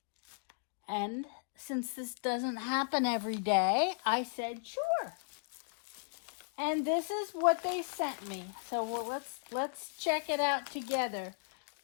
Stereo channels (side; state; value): right; silent; digital silence